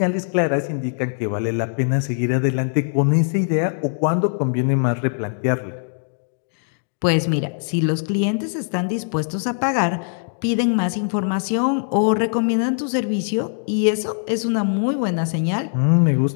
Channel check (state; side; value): silent; right; digital silence